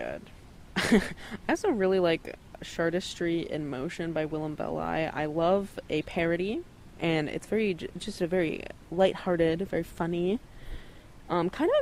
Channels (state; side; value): identical; both; correlation 1.00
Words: I also really like Chartistry in Motion by Willem Belli. I love a parody, and it's just a very lighthearted, very funny. Kind of